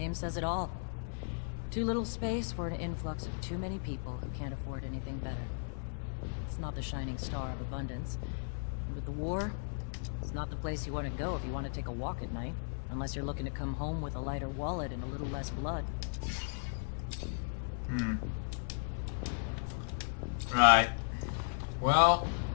says it all. Too little space for an influx of too many people who can't afford anything better. It's not the shining star of abundance. And with the war, it's not the place you want to go if you want to take a walk at night. Unless you're looking to come home with a lighter wallet and a little less blood. Right. Well,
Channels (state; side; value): silent; right; 54 dB below the other